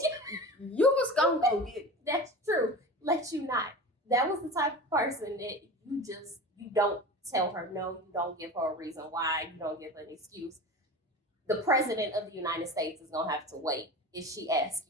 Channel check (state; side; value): normal; both; correlation 0.32